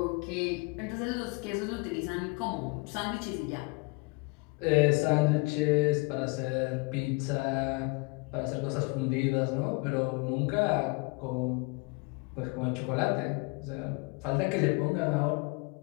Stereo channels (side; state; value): right; quieter; 29.6 dB